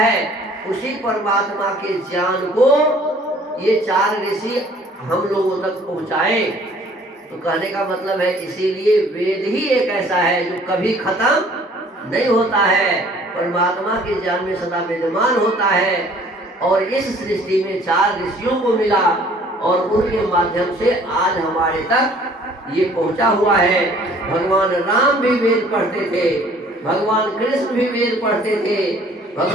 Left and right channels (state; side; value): normal; both; correlation 0.55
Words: उसी परमात्मा के ज्ञान को ये चार ऋषि हम लोगों तक पहुंचाए। तो कहने का मतलब है इसीलिए वेद ही एक ऐसा है जो कभी खत्म नहीं होता है, परमात्मा के ज्ञान में सदा विद्यमान होता है। और इस सृष्टि में चार ऋषियों को मिला और उनके माध्यम से आज हमारे तक ये पहुंचा हुआ है। भगवान राम भी वेद पढ़ते थे, भगवान कृष्ण भी वेद पढ़ते थे,